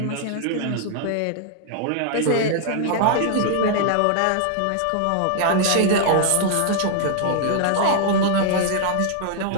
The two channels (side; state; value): both; different; correlation 0.00